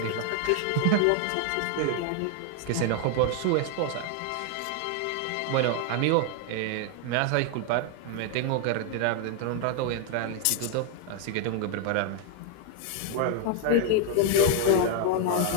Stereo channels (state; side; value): different; both; correlation 0.00